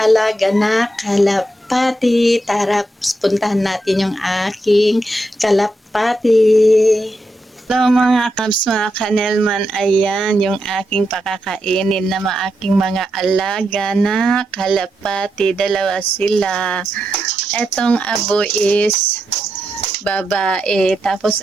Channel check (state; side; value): normal; both; correlation 0.85